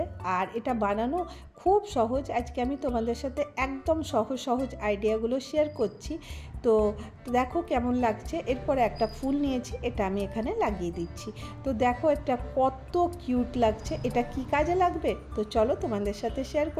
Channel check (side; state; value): both; identical; correlation 1.00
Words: আর এটা বানানো খুব সহজ। আজকে আমি তোমাদের সাথে একদম সহজ আইডিয়াগুলো শেয়ার করছি। তো দেখো কেমন লাগছে। এরপরে একটা ফুল নিয়েছি, এটা আমি এখানে লাগিয়ে দিচ্ছি। তো দেখো এটা কত কিউট লাগছে। এটা কি কাজে লাগবে, তো চলো তোমাদের সাথে শেয়ার